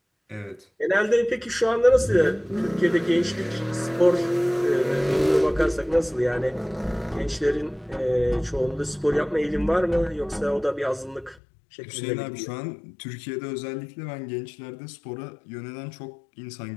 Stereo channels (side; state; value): right; drops out; at 11.4 s